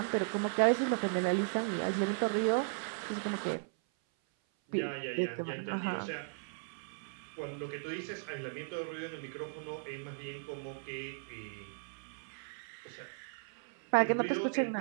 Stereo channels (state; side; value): silent; left; 54 dB below the other